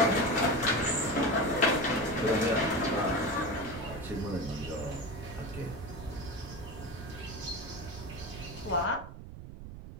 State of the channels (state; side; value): noise; right; rumble, 12 dB below the sound